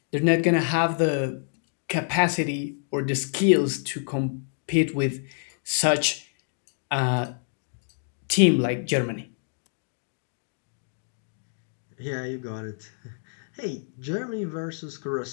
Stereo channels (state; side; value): silent; right; digital silence